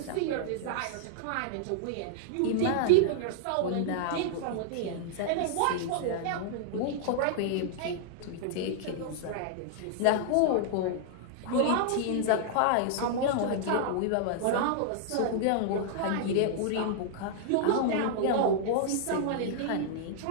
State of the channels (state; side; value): different; both; correlation -0.01